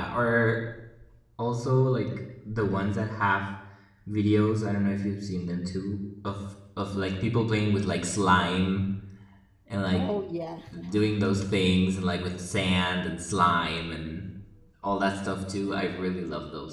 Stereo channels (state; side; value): identical; both; correlation 1.00